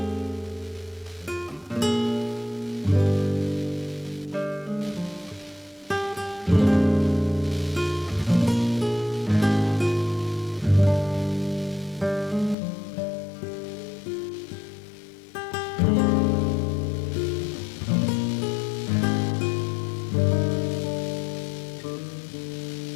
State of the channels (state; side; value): drops out; right; at 12.6 s